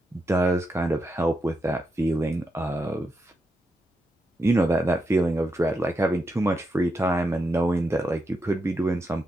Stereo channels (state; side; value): normal; both; correlation 0.84